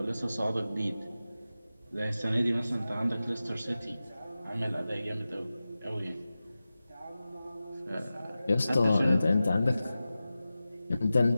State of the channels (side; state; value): both; inverted; correlation -0.95